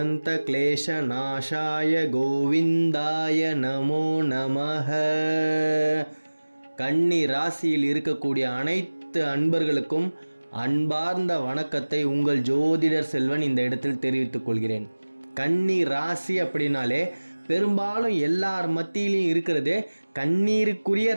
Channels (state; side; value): inverted; both; correlation -1.00